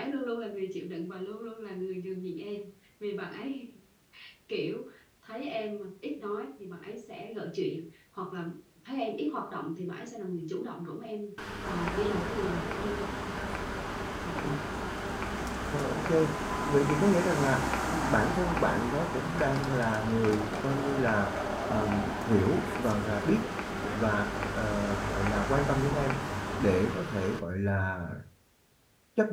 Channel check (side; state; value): both; identical; correlation 1.00